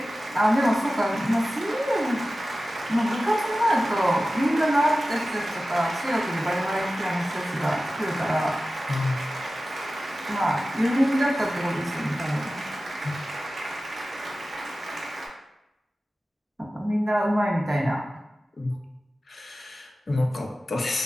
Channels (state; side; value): normal; both; correlation 0.95